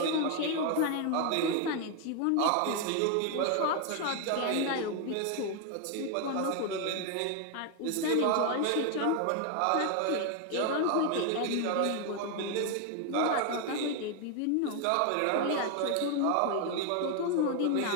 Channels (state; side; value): different; both; correlation 0.01